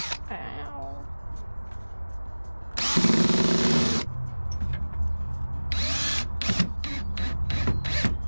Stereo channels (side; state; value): both; inverted; correlation -1.00